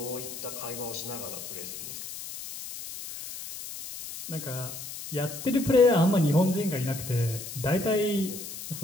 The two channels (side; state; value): left; noise; hiss, 10 dB below the sound